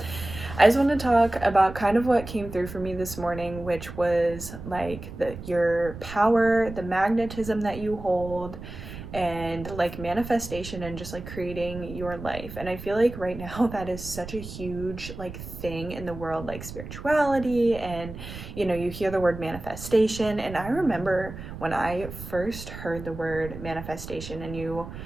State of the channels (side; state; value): right; noise; rumble, 11 dB below the sound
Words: I just want to talk about kind of what came through for me this morning, which was like your power, the magnetism that you hold, and like manifestation and just like creating your life. And I feel like right now that is such a huge like thing in the world, like spirituality, and you hear the word manifestation. And I remember when I first heard the word manifestation, and you